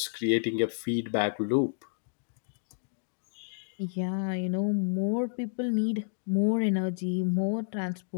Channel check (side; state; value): right; silent; digital silence